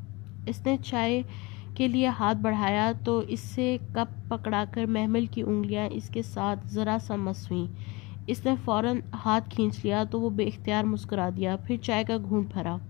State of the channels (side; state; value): right; quieter; 24.7 dB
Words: اس نے چائے کے لیے ہاتھ بڑھایا تو اس سے کپ پکڑا کر محمل کی انگلیاں اس کے ساتھ ذرا سا مس ہوئیں۔ اس نے فوراً ہاتھ کھینچ لیا تو وہ بے اختیار مسکرا دیا، پھر چائے کا گھونٹ بھرا۔